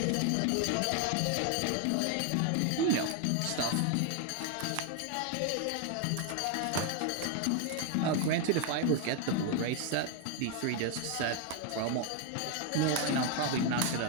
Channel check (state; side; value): different; both; correlation 0.01